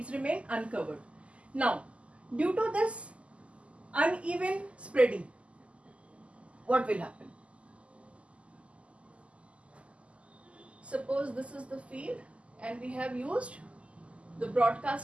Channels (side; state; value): left; late; 0.059 ms